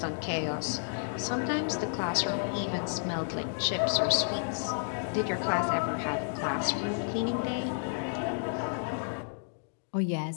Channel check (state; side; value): silent; right; digital silence